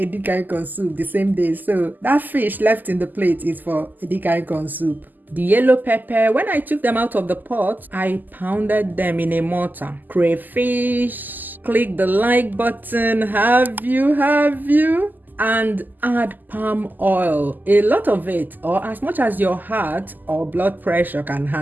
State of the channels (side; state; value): left; late; 0.086 ms